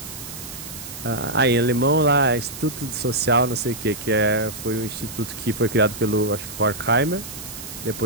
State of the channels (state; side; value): noise; right; hiss, 11 dB below the sound